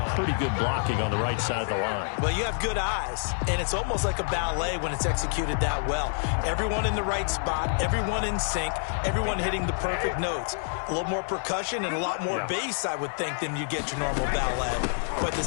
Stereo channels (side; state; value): right; silent; 60 dB below the other